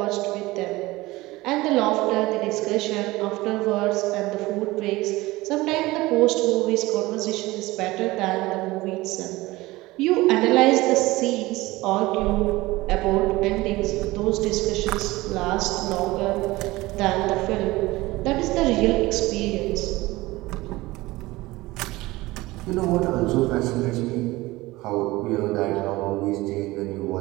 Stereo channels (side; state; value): left; quieter; 19.8 dB